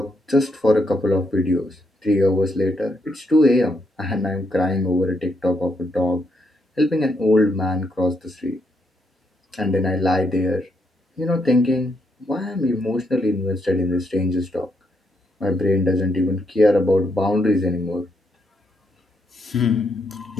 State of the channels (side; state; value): both; normal; correlation 0.78